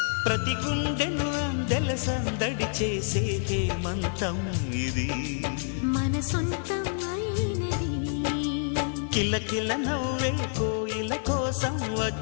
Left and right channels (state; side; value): silent; right; digital silence